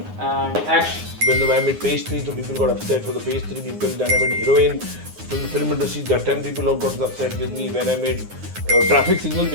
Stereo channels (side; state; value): left; late; 9.7 ms